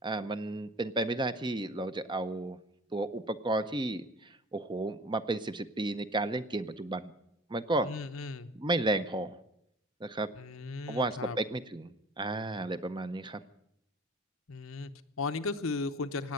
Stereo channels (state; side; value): normal; both; correlation 0.44